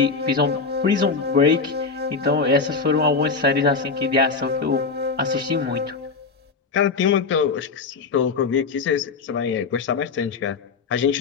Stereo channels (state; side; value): quieter; right; 4.7 dB